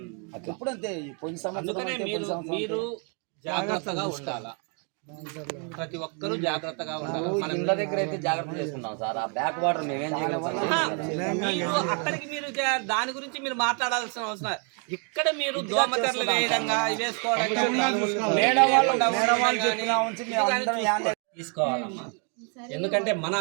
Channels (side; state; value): left; quieter; 38.5 dB